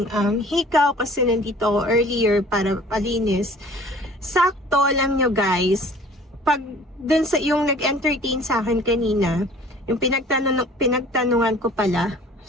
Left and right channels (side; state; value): both; normal; correlation 0.50